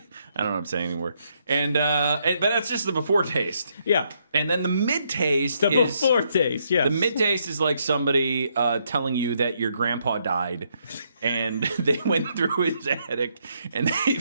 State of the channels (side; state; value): both; inverted; correlation -0.75